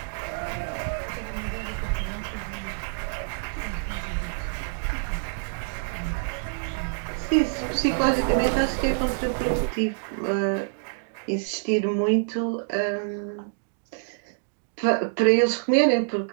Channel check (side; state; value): left; silent; digital silence